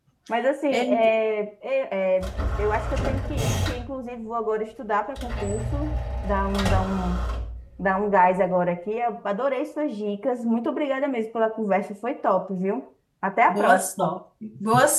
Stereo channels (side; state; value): both; identical; correlation 1.00